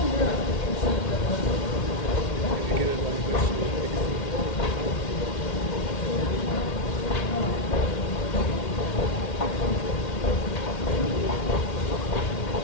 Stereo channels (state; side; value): late; right; 2.1 ms